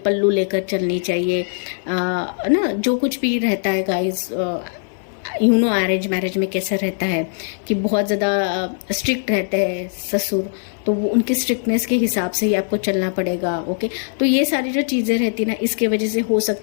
लेकर चलनी चाहिए, ना जो कुछ भी रहता है गाइस, अरेंज मैरिज में कैसा रहता है कि बहुत ज़्यादा स्ट्रिक्ट रहते हैं ससुर, तो वो उनके स्ट्रिक्टनेस के हिसाब से ही आपको चलना पड़ेगा। ओके, तो ये सारी जो चीज़ें रहती ना, इसके वजह से हो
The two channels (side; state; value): right; silent; 59 dB below the other